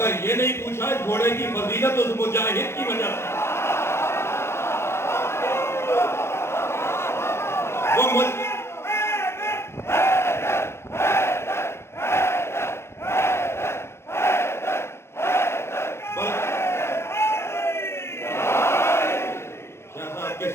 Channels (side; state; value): right; late; 0.12 ms